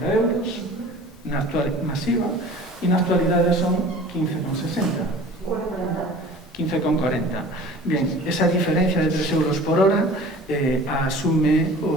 euros na actual masiva, e na actualidade son 15,60. 15,40. Bien, esa diferencia de 3 euros por hora asume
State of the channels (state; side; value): normal; both; correlation 0.43